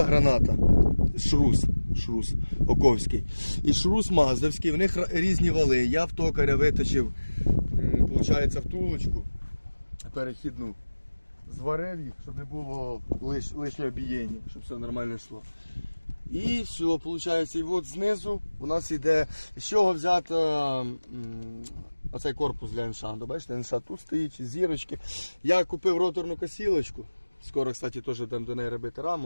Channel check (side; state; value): both; inverted; correlation -1.00